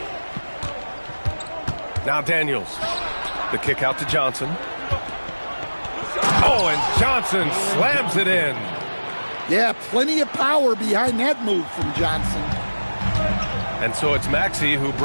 Now Daniels. The kick out to Johnson. Oh, and Johnson slams it in. Yeah, plenty of power behind that move from Johnson. And so it's Maxey who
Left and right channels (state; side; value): inverted; both; correlation -1.00